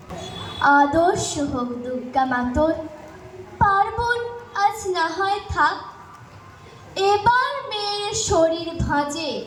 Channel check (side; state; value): both; identical; correlation 1.00